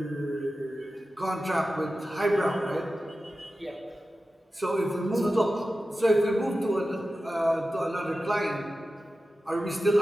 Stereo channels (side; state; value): both; normal; correlation 0.93